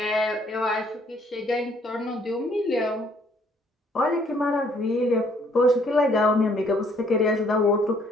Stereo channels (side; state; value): both; normal; correlation 0.64